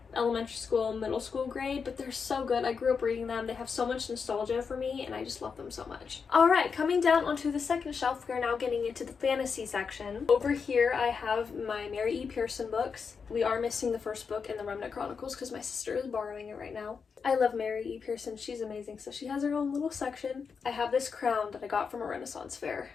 elementary school, middle school grade, but they're so good. I grew up reading them. They have so much nostalgia for me, and I just love them so much. All right, coming down onto the second shelf, we are now getting into the fantasy section. Over here, I have my Mary E. Pearson books. We are missing the first book in the Remnant Chronicles because my sister is borrowing it right now. I love Mary E. Pearson. She's amazing, so she has her own little section. I have this crown that I got from a Renaissance fair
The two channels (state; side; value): quieter; right; 5.7 dB